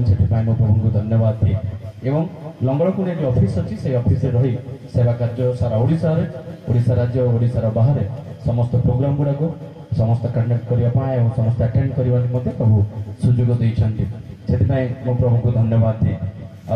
प्रभु को धन्यवाद दिए एवं लंगड़कुंड जो ऑफिस अच्छी से ऑफिस रही सेवा कार्य सारा ओडिशा राज्य ओडिशार बाहर समस्त प्रोग्राम गुड़ाक समस्त कंडक्ट करने समस्त अटेंड करने प्रभु सुजोग देते से प्रभु को धन्यवाद दिए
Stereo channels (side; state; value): both; identical; correlation 1.00